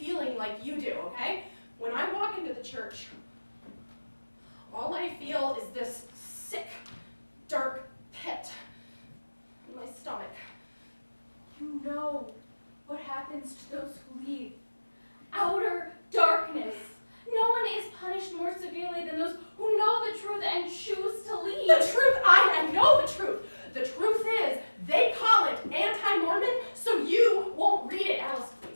like you do, okay? When I walk into the church, all I feel is this sick, dark pit in my stomach. You know what happens to those who leave. Outer darkness. No one is punished more severely than those who know the truth and choose to leave. The truth, I know the truth. The truth is, they call it anti-Mormon, so you won't read it, Alice,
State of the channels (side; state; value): both; inverted; correlation -1.00